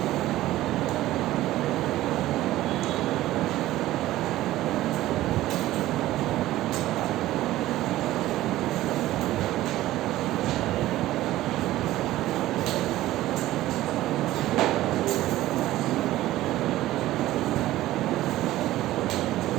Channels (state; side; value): quieter; left; 15.5 dB